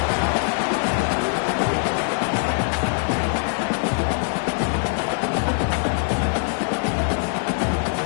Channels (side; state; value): right; silent; 55 dB below the other